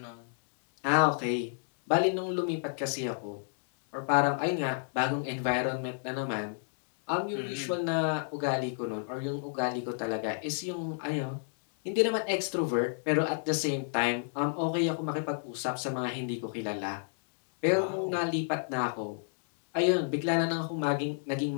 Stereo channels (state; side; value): silent; right; digital silence